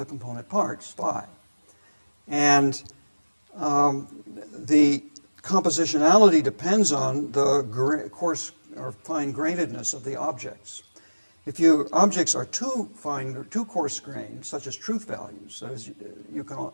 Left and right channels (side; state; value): both; inverted; correlation -1.00